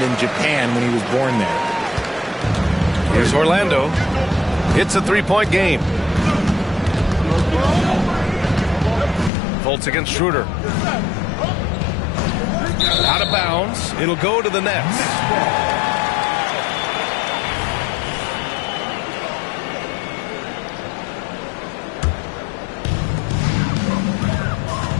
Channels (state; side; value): drops out; right; at 9.3 s